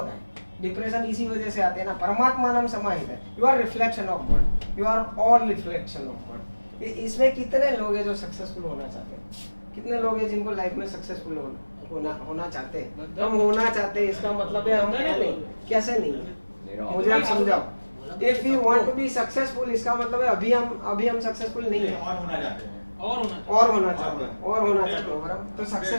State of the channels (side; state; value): both; inverted; correlation -1.00